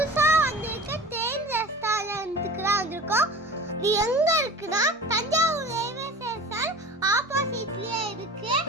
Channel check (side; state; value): both; normal; correlation 0.37